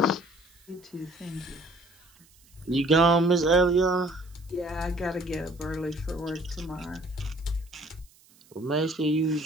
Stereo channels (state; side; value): noise; right; hiss, 29 dB below the sound